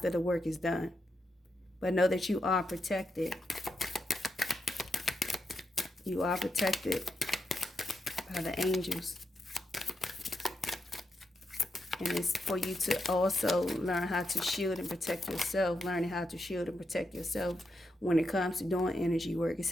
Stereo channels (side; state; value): both; normal; correlation 0.84